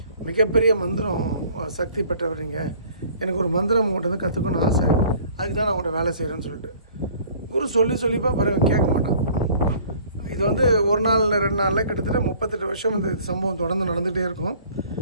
மிகப்பெரிய மந்திரம் சக்தி பெற்றவர் நீங்கள், எனக்கு ஒரு மந்திரம் உங்கள்கிட்ட வந்து கற்றுக்கணும்னு ஆசை, அதுக்கு தான் நான் உங்கள்கிட்ட வேலை செய்கிறேன்னு சொல்லிட்டு குரு சொல்லிப்பா பிறகு கேட்க மாட்டான். இது வந்து ஒரு நாள் 2 நாளில் கிட்டத்தட்ட 38 வருஷம் இந்த சம்பவம் தொடர்ந்து நடந்துகிட்டே இருக்கும்.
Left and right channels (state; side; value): inverted; both; correlation -0.53